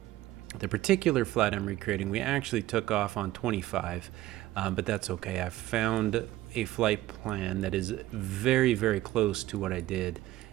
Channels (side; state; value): left; quieter; 15.5 dB